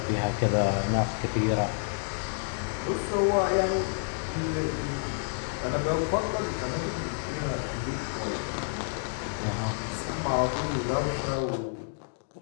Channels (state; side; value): silent; right; digital silence